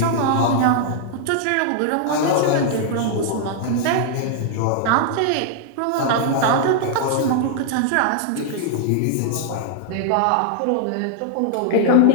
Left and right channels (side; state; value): both; different; correlation -0.01